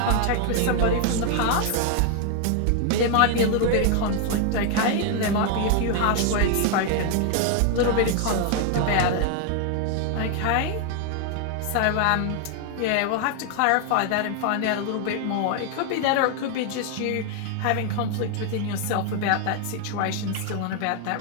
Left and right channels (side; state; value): both; different; correlation 0.00